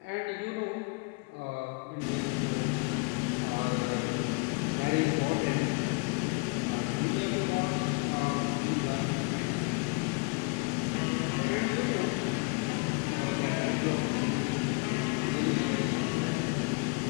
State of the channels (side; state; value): right; quieter; 31.4 dB